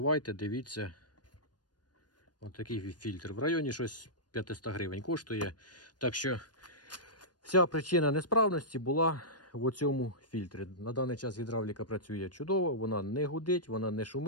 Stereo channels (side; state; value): right; late; 0.69 ms